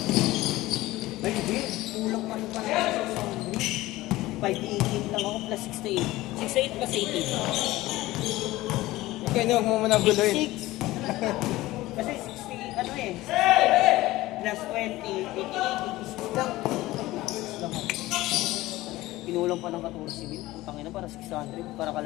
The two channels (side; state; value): right; quieter; 17.8 dB